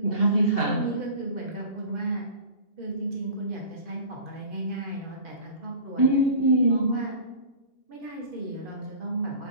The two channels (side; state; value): right; late; 2.7 ms